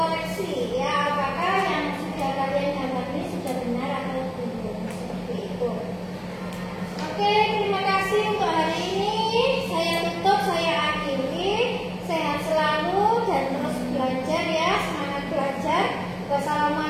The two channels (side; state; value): both; identical; correlation 1.00